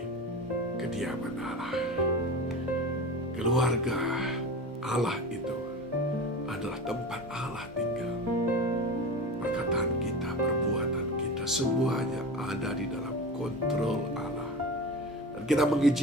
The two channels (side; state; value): both; normal; correlation 0.30